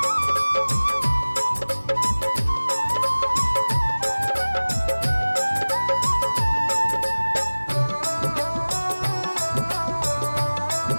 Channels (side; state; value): both; inverted; correlation -1.00